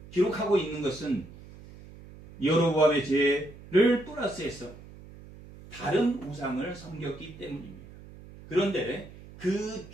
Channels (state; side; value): noise; right; hum, 18 dB below the sound